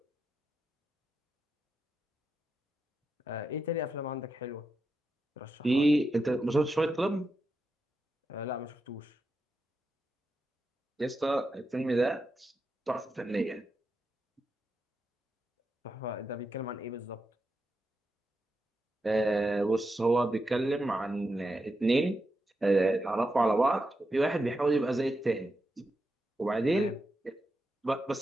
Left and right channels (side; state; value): both; normal; correlation 0.87